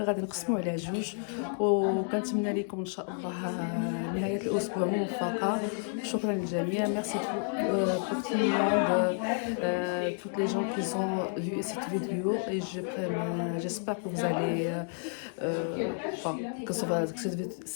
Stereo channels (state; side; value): silent; right; 57 dB below the other